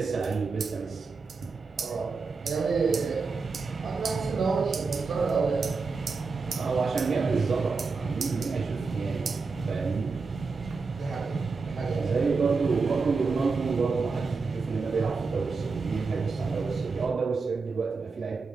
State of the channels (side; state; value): left; quieter; 4.5 dB